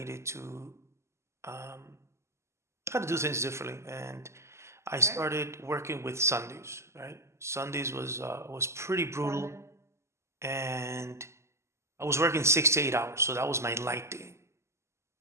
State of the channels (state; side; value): late; left; 0.13 ms